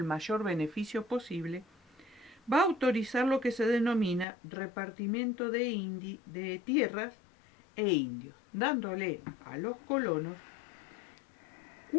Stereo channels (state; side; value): drops out; right; at 4.2 s